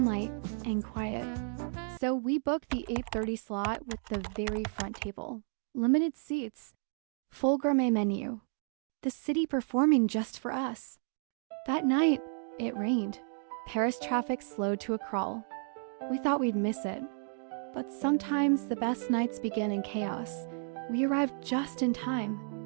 and quiet. So we booked the 8:30 slot with the very front table. Limited seats, full gourmet menu. The city performing just for us. That night, it rained. Paris traffic slowed to a crawl. We thought we'd miss it. But sometimes the best nights begin in chaos. We arrived just in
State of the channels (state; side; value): silent; left; 56 dB below the other